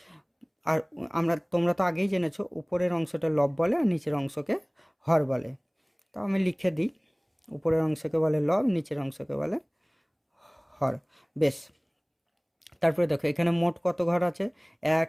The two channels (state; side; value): identical; both; correlation 1.00